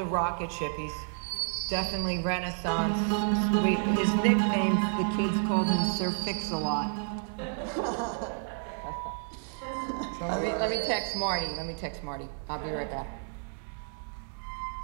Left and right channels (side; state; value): left; silent; digital silence